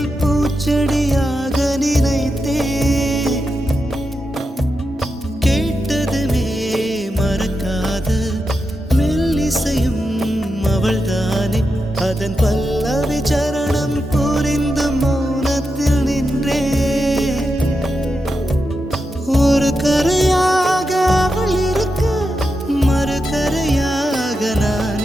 பூச்செடியாக நினைத்தே. கேட்டதுமே மறக்காத மெல்லிசையும் அவள்தானே, அதன் பல்லவி சரணம் புரிந்து மௌனத்தில் நின்றே. ஒரு கரையாக அவள் இருக்க, மறுகரையாக நான்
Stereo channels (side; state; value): both; normal; correlation 0.88